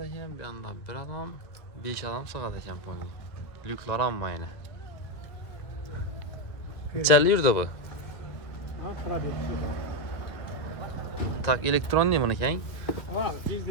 bir anda 1 adam, 5 adam sığad ekan pony. Lüklar amma yine. Nechanli yurdi bu? Tak elektron değil buniki hein? Ha, biz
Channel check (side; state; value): right; late; 2.0 ms